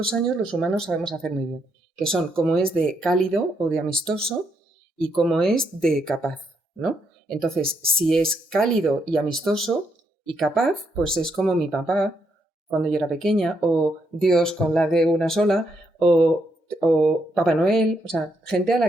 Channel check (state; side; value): normal; both; correlation 0.77